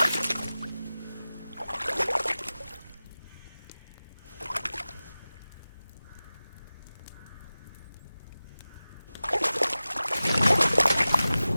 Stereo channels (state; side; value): inverted; both; correlation -0.97